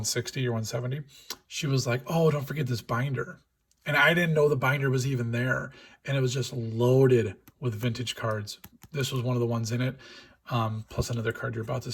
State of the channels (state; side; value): identical; both; correlation 1.00